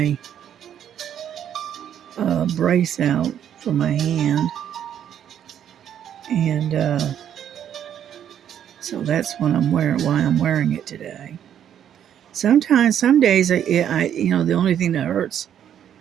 brace out for my hand, and so that's what I'm wearing. Why I'm wearing it today. Sometimes, some days, the only thing that hurts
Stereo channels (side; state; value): left; quieter; 9.7 dB